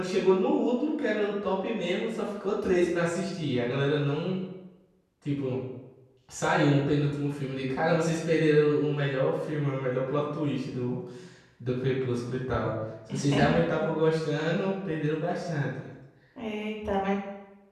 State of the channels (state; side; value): identical; both; correlation 1.00